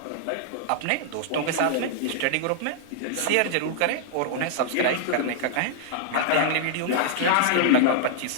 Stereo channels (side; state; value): both; different; correlation -0.01